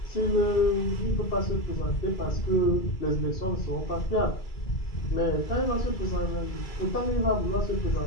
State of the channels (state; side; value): late; right; 2.3 ms